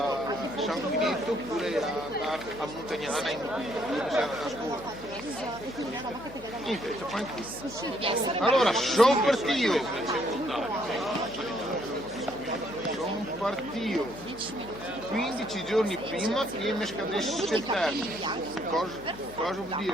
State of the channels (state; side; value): noise; left; hum, 18 dB below the sound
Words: San Finito oppure a Montagnana in a scuola. Niente, c'è qua anche. Allora, sono partito. Sono partito 15 giorni prima che mi scadesse il termine. Cosa vuol